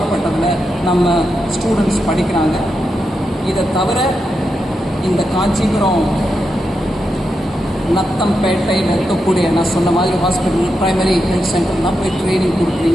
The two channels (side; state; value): both; normal; correlation 0.86